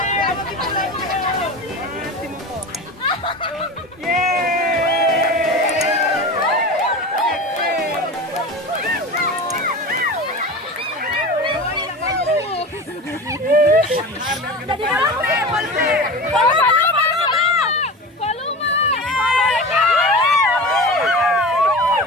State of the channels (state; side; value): normal; both; correlation 0.31